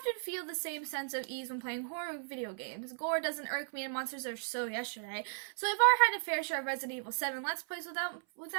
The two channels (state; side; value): silent; left; 54 dB below the other